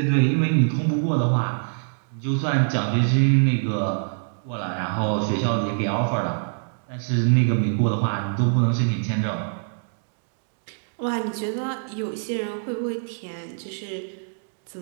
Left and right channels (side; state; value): left; silent; digital silence